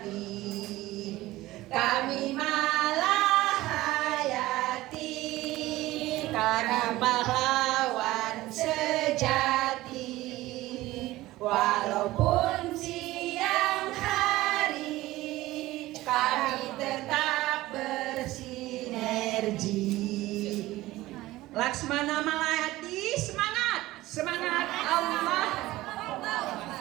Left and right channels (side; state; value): left; quieter; 17.5 dB